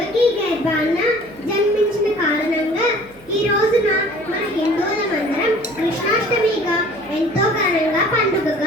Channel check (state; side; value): noise; right; hum, 26 dB below the sound